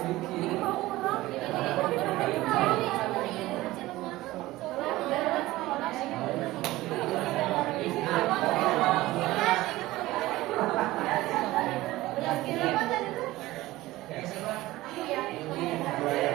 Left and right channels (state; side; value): quieter; left; 17.8 dB